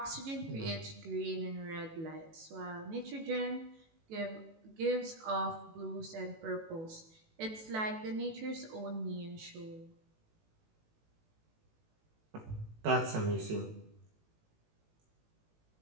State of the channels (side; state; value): left; late; 18 ms